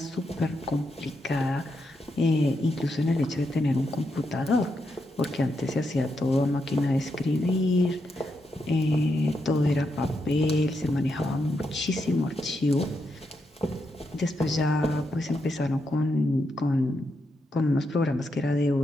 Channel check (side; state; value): both; normal; correlation 0.83